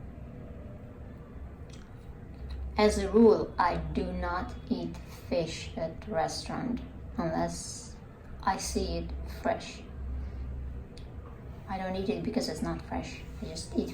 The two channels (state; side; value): identical; both; correlation 1.00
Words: As a rule, I do not eat fish at the restaurant unless I see it fresh. I don't eat it because it's not fresh. I just eat